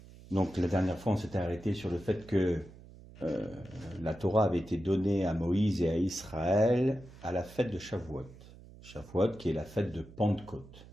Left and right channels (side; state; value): right; noise; hum, 19 dB below the sound